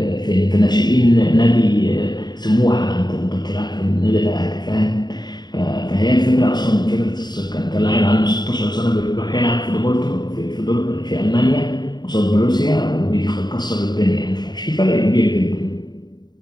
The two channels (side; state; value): right; late; 0.20 ms